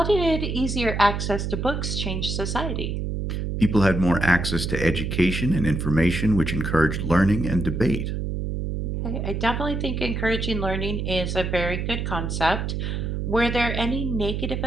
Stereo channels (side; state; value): right; noise; hum, 2 dB below the sound